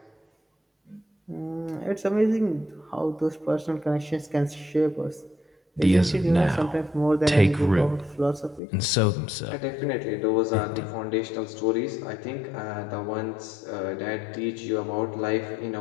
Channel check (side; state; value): right; drops out; at 8.6 s